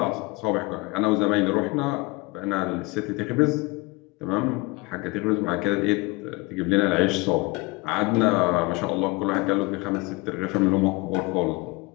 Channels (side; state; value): right; quieter; 24.5 dB